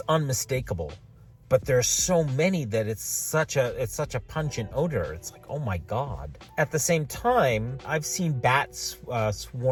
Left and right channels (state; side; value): identical; both; correlation 1.00